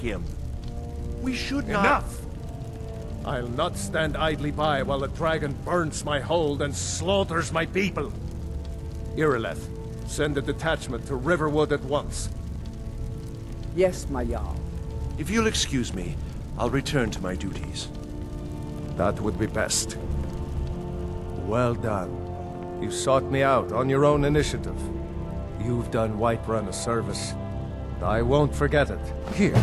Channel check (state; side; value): identical; both; correlation 1.00